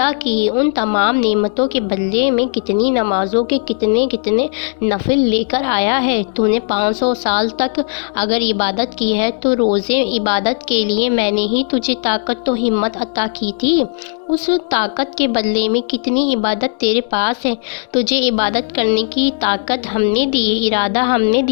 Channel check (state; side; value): silent; right; digital silence